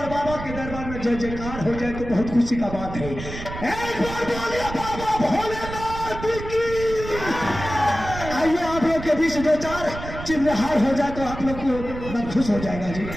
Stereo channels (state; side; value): noise; right; rumble, 9 dB below the sound